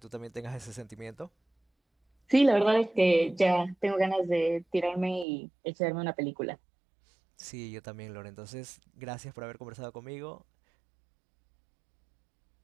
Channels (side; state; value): left; drops out; at 5.2 s